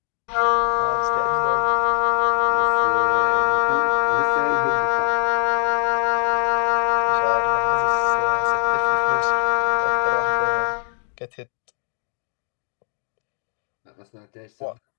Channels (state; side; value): silent; right; digital silence